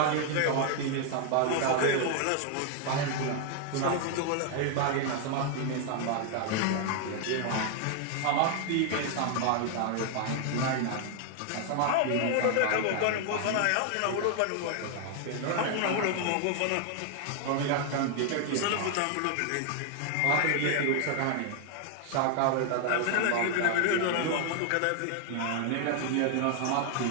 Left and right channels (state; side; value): different; both; correlation 0.00